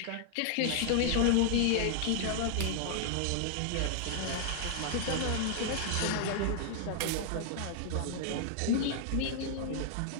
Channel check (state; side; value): different; both; correlation 0.00